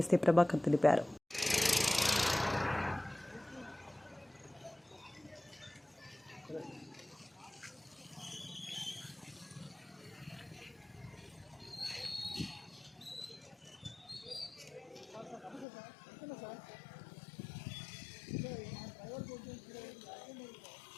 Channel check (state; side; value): drops out; right; at 15.7 s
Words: ఎస్సీ ప్రభాకర్ తెలిపారు.